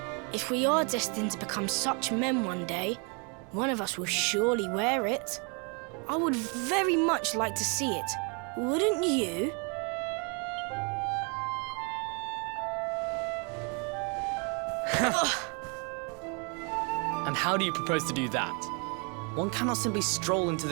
If we are destined to become such men one day, one of us will surely wear it. I would very much like to see it, wouldn't you? And how do you propose to do that? One cannot simply stroll into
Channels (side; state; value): left; quieter; 34.9 dB